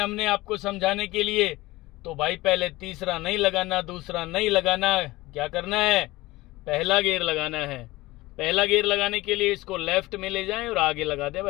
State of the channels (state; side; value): quieter; right; 19.6 dB